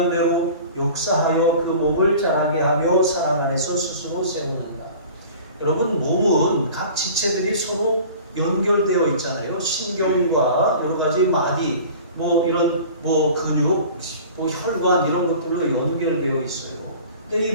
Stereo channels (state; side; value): inverted; both; correlation -0.42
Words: 역사하여 그 몸을 자라게 하며 사랑 안에서 스스로 세우는가. 여러분, 몸은 각 지체들이 서로 연결되어 있잖아요. 신경과 여러 가지 마디, 이런 근육, 혈관 이런 것들로 연결되어 있어요. 근데 이